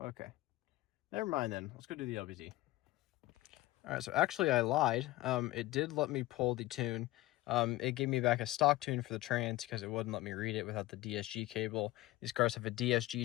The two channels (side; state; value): right; quieter; 17.6 dB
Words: Never mind then. Let's go do the LBZ. Alright, so actually I lied. It did let me pull the tune. It gave me back a stock tune for the trans because it wouldn't let me read it without the DSG cable. These cars have a